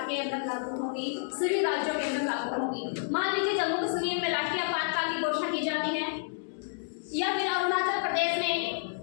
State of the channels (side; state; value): right; silent; digital silence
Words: के अंदर लागू होंगी, सभी राज्यों के अंदर लागू होंगी। मान लीजिए जम्मू कश्मीर में राष्ट्रीय आपातकाल की घोषणा की जाती है या फिर अरुणाचल प्रदेश में